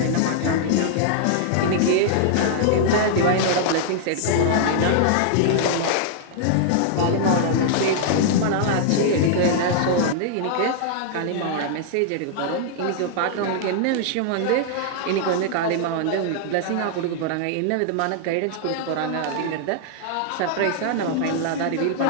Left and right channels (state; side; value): different; both; correlation -0.01